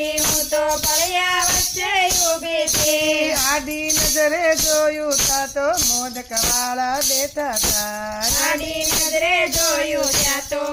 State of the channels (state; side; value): identical; both; correlation 1.00